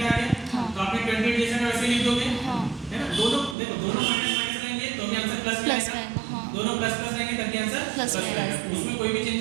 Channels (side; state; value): left; drops out; at 3.6 s